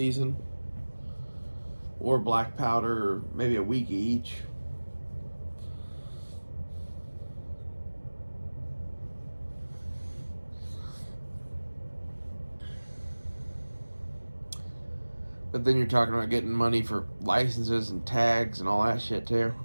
or black powder, or maybe a week each. But then you're talking about getting money for licenses and tags and all that shit too.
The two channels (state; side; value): inverted; both; correlation -1.00